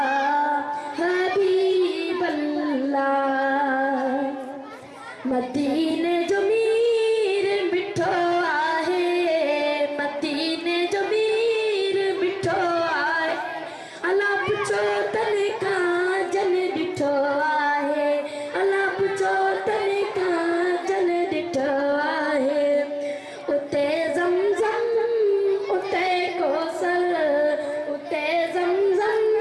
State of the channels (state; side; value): identical; both; correlation 1.00